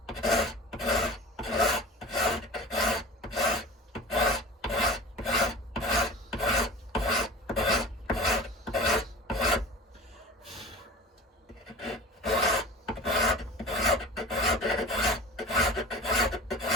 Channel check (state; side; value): normal; both; correlation 0.37